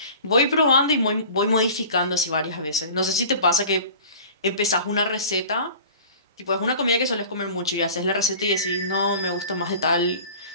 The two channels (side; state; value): both; inverted; correlation -0.42